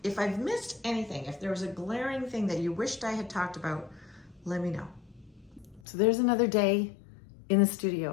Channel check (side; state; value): right; drops out; at 5.8 s